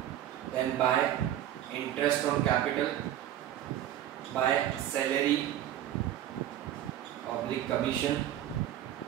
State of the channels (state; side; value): quieter; left; 12.0 dB